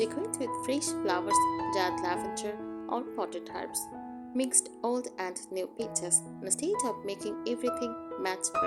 with fresh flowers, dried lavender, or potted herbs. Mixed old and new pieces instead of making everything match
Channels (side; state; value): both; identical; correlation 1.00